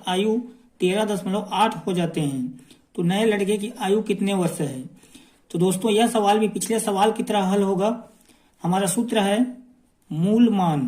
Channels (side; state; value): both; identical; correlation 1.00